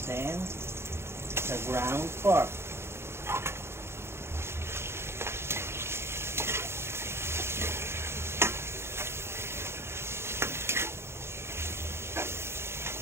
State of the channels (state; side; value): late; left; 0.12 ms